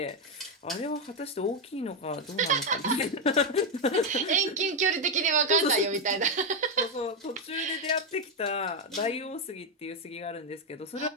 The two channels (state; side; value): normal; both; correlation 0.05